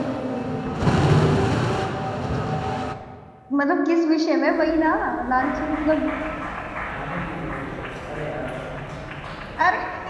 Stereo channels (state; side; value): identical; both; correlation 1.00